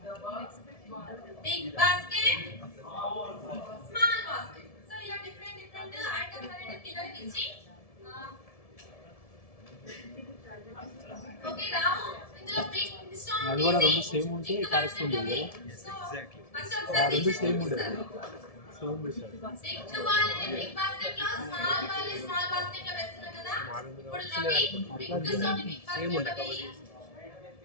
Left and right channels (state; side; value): late; right; 1.7 ms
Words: Big basket small basket. So ఇలా డిఫరెంట్ ఐటమ్స్ అనేది పిల్లలకి ఇచ్చి ఓకే రావు ఇందులో బిగ్ స్టోన్ అది కూడా రెండు సేమ్ ఉంటే కరెస్పాండ్ చేయాలి. ఎగ్జాక్ట్లీ రెండు సేమ్ ఉండాలి. సేమ్ బిషర్ బిగ్ బాల్ ని బిగ్ బాస్కెట్ లో స్మాల్ బాల్ ని స్మాల్ బాస్కెట్ లో వేస్తున్నా కదా. ఇప్పుడు రవి బిగ్ స్టోన్ ని బిగ్ బాస్కెట్ లో వేయి.